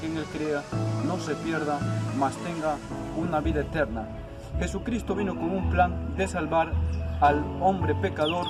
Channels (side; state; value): both; identical; correlation 1.00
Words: en él crea no se pierda, mas tenga una vida eterna. Jesucristo vino con un plan de salvar al hombre pecador